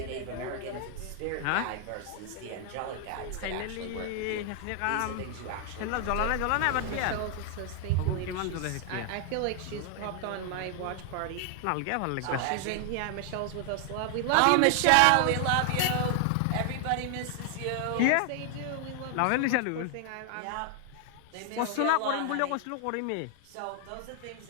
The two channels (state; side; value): different; both; correlation 0.00